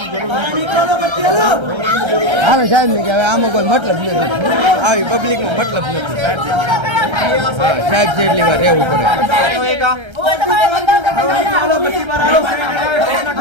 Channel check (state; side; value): late; left; 1.3 ms